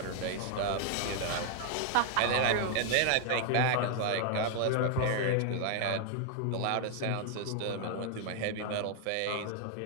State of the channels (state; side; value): different; both; correlation 0.00